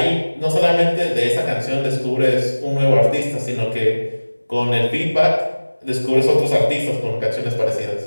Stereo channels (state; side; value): inverted; both; correlation -1.00